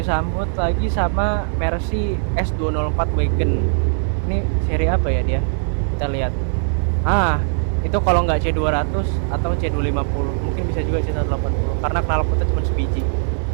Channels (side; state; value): left; silent; 66 dB below the other